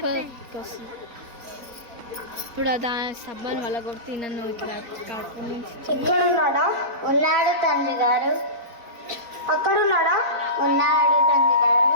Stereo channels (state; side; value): late; left; 4.0 ms